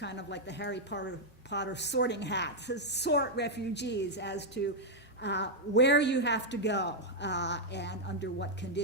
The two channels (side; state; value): both; normal; correlation -0.02